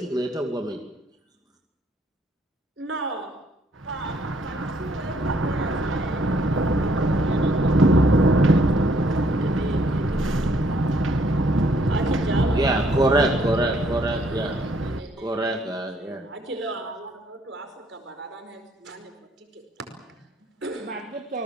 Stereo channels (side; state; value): both; normal; correlation 0.67